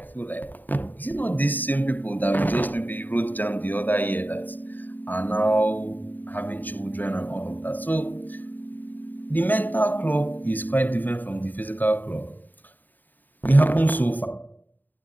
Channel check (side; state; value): right; late; 0.088 ms